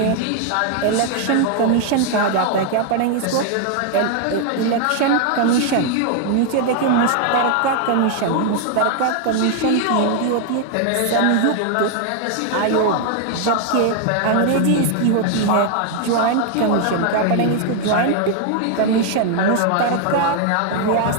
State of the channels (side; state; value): both; different; correlation 0.00